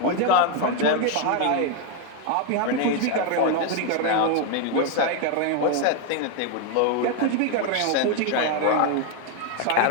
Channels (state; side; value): different; both; correlation 0.01